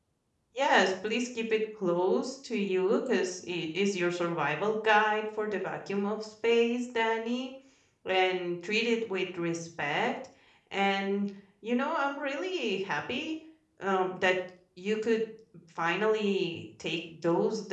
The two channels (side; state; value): both; identical; correlation 1.00